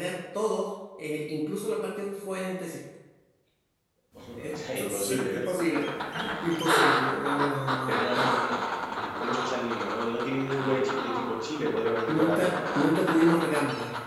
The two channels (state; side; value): identical; both; correlation 1.00